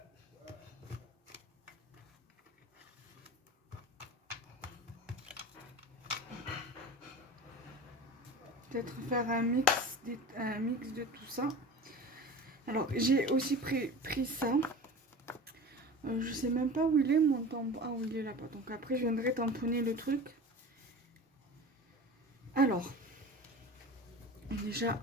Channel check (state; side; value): normal; both; correlation 0.35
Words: Peut-être faire un mix de tout ça. Alors j'ai aussi pris ça. Je sais même pas où il est mon tampon. Ah oui, il est là-bas. Donc après je viendrai tamponner le truc. Alors déjà